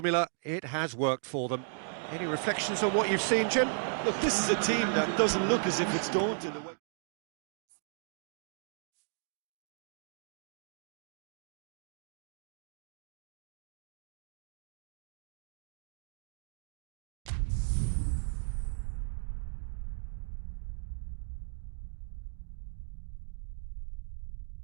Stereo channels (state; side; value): silent; left; digital silence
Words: it has worked for them. Any reflections on what you've seen, Jim? Look, this is a team that doesn't look as if it's daunted away.